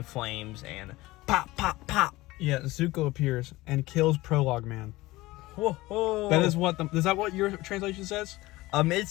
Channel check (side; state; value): right; quieter; 19.4 dB